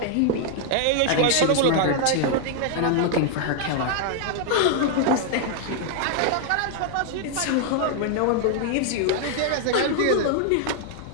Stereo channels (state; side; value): different; both; correlation 0.00